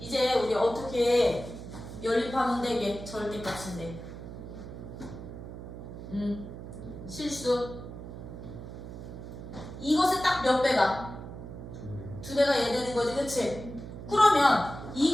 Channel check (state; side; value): noise; right; hum, 11 dB below the sound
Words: 우리 어떻게 연립하면 되게 절대값인데 실수 이것에 딱 몇 배가? 두 배가 얘 되는 거지, 그치? 그러면